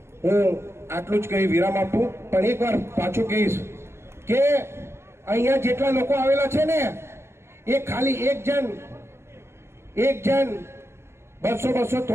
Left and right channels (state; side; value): late; left; 0.12 ms